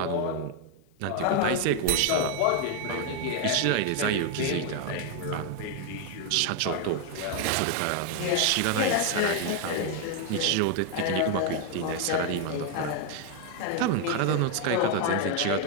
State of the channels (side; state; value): both; different; correlation 0.01